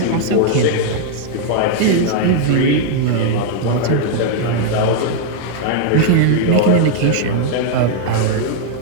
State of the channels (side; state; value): both; different; correlation 0.00